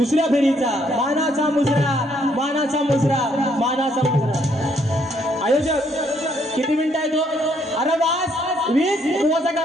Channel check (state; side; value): normal; both; correlation 0.70